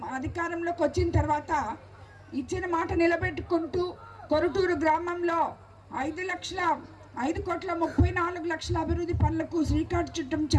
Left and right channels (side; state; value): both; identical; correlation 1.00